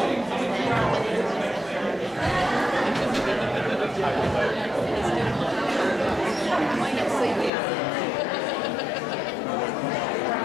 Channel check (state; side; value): drops out; right; at 7.5 s